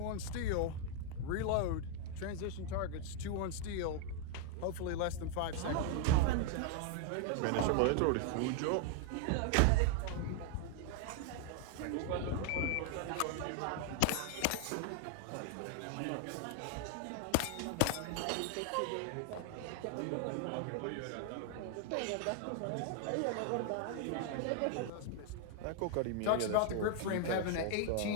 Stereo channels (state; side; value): different; both; correlation 0.00